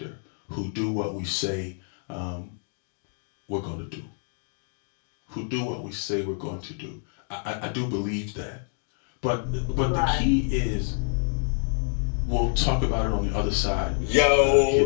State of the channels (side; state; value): right; silent; 58 dB below the other